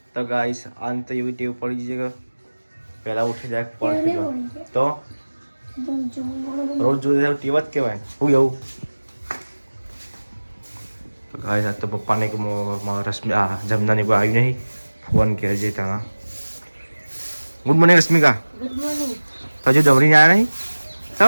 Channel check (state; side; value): inverted; both; correlation -1.00